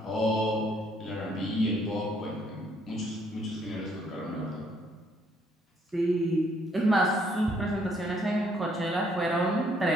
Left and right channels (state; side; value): normal; both; correlation 0.67